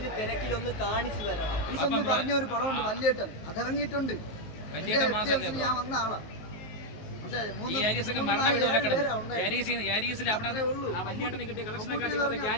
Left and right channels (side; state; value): right; late; 19 ms